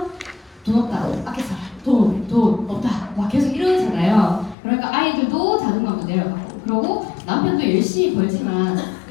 돈 없다, 아껴 살아, 돈 없다, 막 계속 이러잖아요. 그러니까 아이들도 자존감도 내려가고, 그러고 남편도 열심히 벌지만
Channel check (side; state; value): right; drops out; at 4.5 s